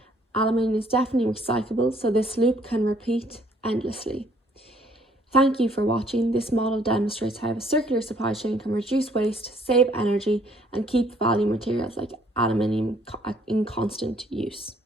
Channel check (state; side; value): normal; both; correlation 0.63